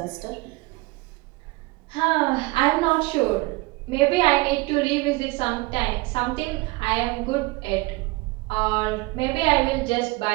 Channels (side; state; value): left; quieter; 22.6 dB